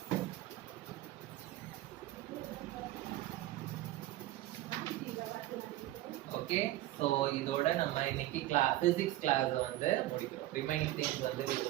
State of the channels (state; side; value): quieter; left; 15.8 dB